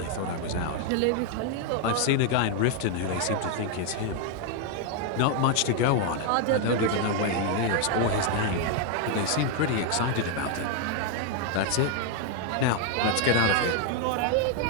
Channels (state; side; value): different; both; correlation 0.00